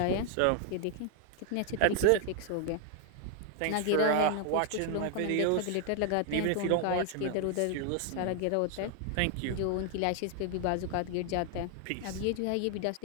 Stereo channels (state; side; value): different; both; correlation 0.00